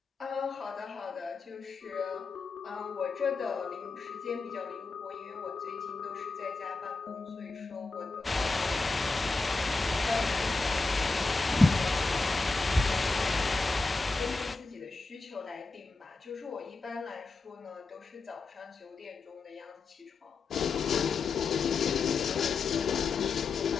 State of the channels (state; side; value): quieter; right; 3.9 dB